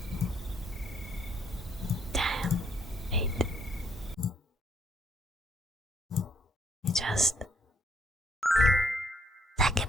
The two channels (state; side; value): normal; both; correlation 0.68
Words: Damn, wait. Just Thank